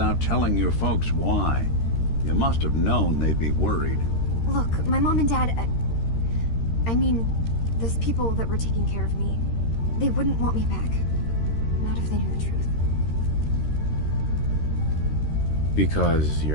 telling your folks why. You must have known they'd be worried. Look, my mom and dad... I mean, those people that were taking care of me, they wouldn't want me back. Not if they knew the truth. Because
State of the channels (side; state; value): right; late; 13 ms